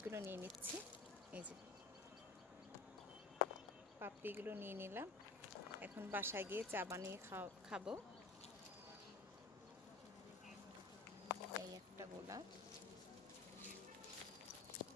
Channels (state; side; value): quieter; right; 3.9 dB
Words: নিয়ে নিচ্ছি। এই যে পাপড়িগুলো নিয়ে নিলাম। এখন বাসায় গিয়ে চা বানিয়ে খাবো। এই একটা গোলাপ,